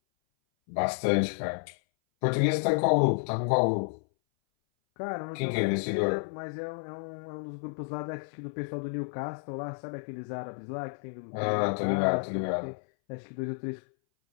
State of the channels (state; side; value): silent; right; 58 dB below the other